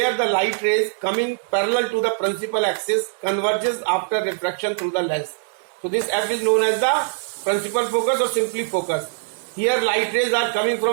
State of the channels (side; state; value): left; silent; 64 dB below the other